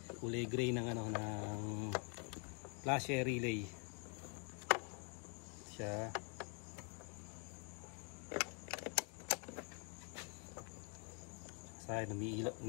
Kulay gray ng ng flasher relay. Siya. Sayang,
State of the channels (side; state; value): right; quieter; 37.9 dB